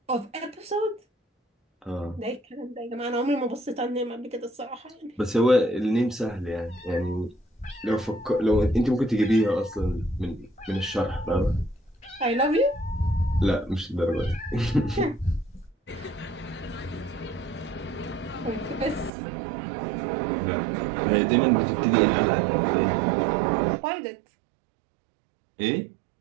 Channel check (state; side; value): drops out; left; at 19.1 s